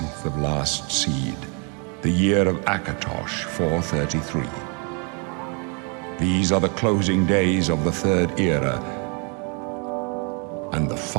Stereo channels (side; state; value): left; quieter; 35.1 dB